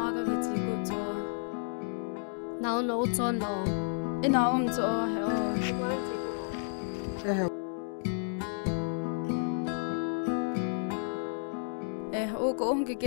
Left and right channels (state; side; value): silent; right; digital silence